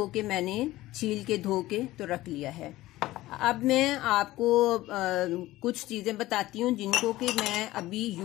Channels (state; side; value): quieter; right; 17.0 dB